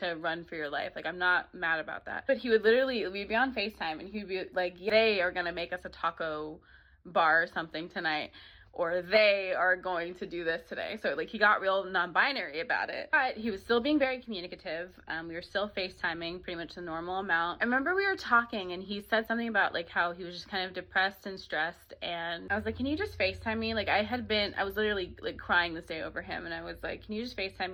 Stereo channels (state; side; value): identical; both; correlation 1.00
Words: run for your life. Like I'm not mad about that. But we'd be on FaceTime and he'd be like, they are going to make us a taco bar or something tonight, or they are going to do this today. So like he got real non-binary about it, but he was still being very communicative. We were still FaceTiming pretty much the normal amount. I remember we were talking and he said something about like how he was just kind of depressed and stressed. And I was like, can you just FaceTime me? Like I was literally like crying this day over him. And I was like, can you just FaceTime